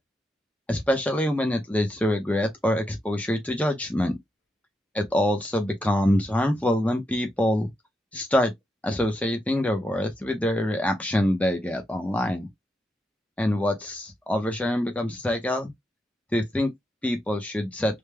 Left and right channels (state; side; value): normal; both; correlation 0.83